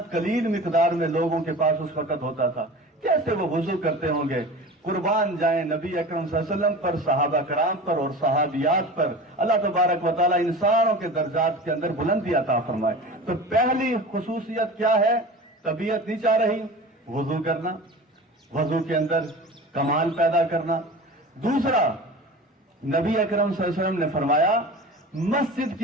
قلیل مقدار میں لوگوں کے پاس اس وقت ہوتا تھا. کیسے وہ وضو کرتے ہوں گے؟ قربان جائیں نبی اکرم صلی اللہ علیہ وسلم پر، صحابہ کرام پر اور صحابیات پر اللہ تبارک و تعالیٰ انسانوں کے درجات کے اندر بلندی عطا فرمائے. تو پہلی خصوصیت کیا ہے؟ طبیعت نہیں چاہ رہی، وضو کرنا، وضو کے اندر کمال پیدا کرنا. دوسرا، نبی اکرم صلی اللہ علیہ وسلم نے فرمایا مسجد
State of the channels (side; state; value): both; normal; correlation 0.35